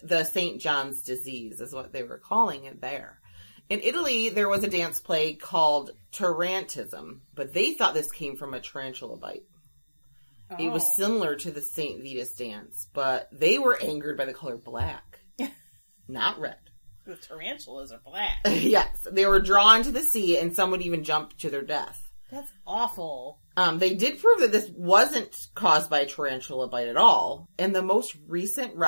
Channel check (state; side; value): inverted; both; correlation -1.00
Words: the St. John's disease, is what they were calling it there. In Italy, there was a dance plague called tarantism, but they thought this came from a tarantula bite. Oh. It was similar to the St. Vitus dance, but they were angered by the color black, not red. The tarantulas are black. Yes, they were drawn to the sea, and some would even jump to their death. That's awful. They did prove that this wasn't caused by a tarantula bite at all, and the most recent